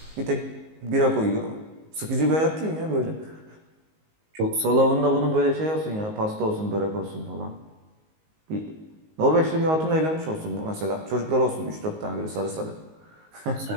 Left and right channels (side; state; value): left; late; 19 ms